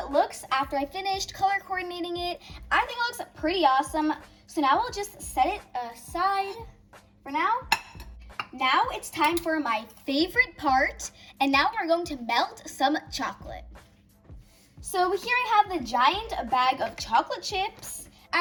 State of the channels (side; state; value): both; identical; correlation 1.00